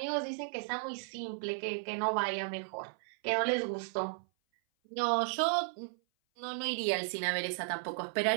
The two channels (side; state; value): left; silent; 55 dB below the other